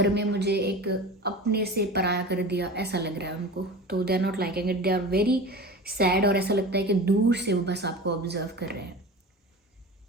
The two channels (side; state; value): both; normal; correlation 0.33